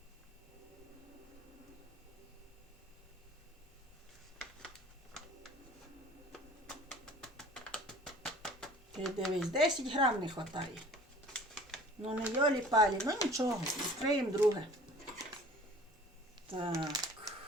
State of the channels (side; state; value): both; normal; correlation 0.48